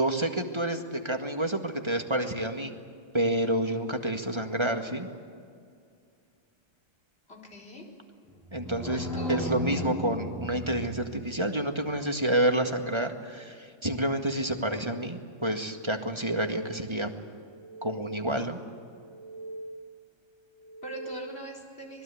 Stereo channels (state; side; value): late; left; 1.3 ms